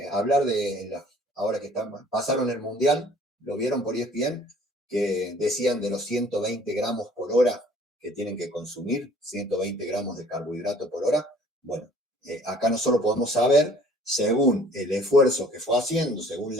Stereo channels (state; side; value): normal; both; correlation 0.54